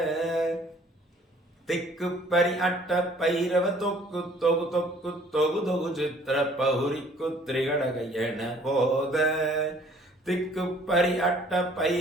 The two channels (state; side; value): normal; both; correlation 0.57